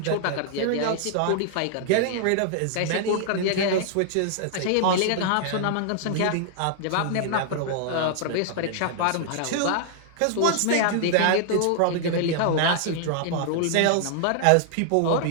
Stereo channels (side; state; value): both; different; correlation -0.01